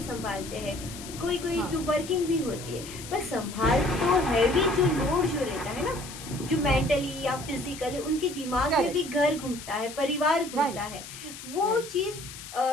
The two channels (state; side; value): noise; left; hiss, 13 dB below the sound